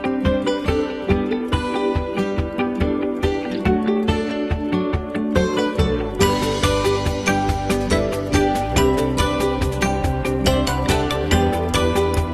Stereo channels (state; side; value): identical; both; correlation 1.00